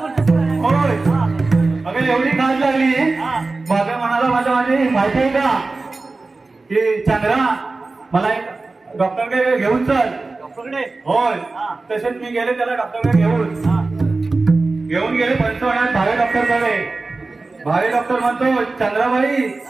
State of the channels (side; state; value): left; quieter; 3.6 dB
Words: काय? होय अगं एवढी खाज लागली. बाप्या म्हणाला माझी माहिती आहे का की चंद्रा मला एक डॉक्टरकडे घेऊन चल. डॉक्टरकडे? होय तसेच मी गेले त्याला डॉक्टरकडे घेऊन गेले पंचवण्यात भावे डॉक्टरकडे. भावे डॉक्टर म्हणतो चंद्राबाई